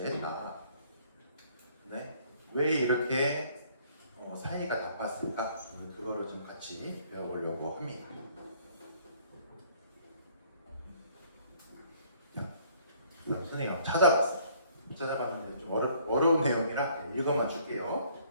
네, 왜 이렇게 사이가 나빴을까? 그거를 좀 같이 배워보려고 합니다. 자, 선생님이 한번 찾아봤는데 좀 어려운 내용이라 읽어만 줄게요.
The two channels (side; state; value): both; inverted; correlation -0.60